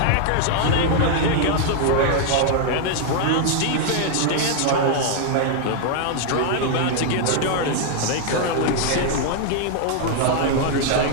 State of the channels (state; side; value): different; both; correlation 0.00